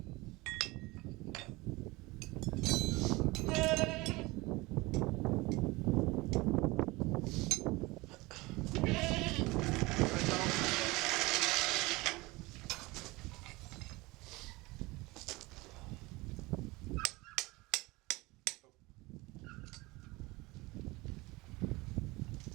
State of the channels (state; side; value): quieter; left; 22.4 dB